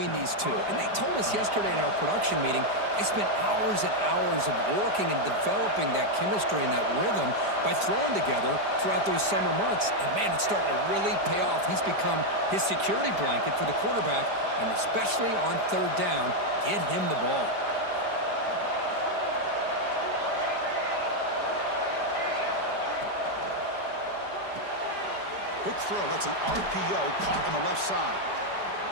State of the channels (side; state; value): left; late; 5.0 ms